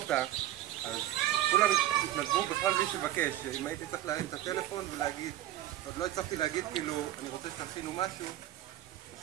אז כולם התנדבו בכלל בלי שבקש. אם הייתי צריך להרים את הטלפון ולהגיד, עוד לא הצלחתי להגיד כאילו אני רוצה שתכינו משהו,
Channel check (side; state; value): left; quieter; 13.7 dB